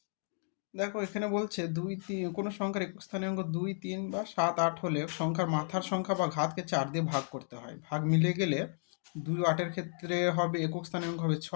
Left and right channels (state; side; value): silent; right; 56 dB below the other